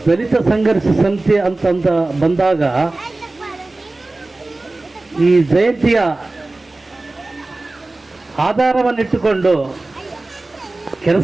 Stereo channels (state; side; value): quieter; left; 3.0 dB